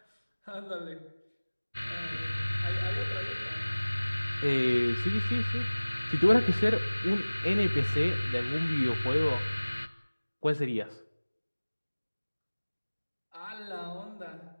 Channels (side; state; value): both; inverted; correlation -1.00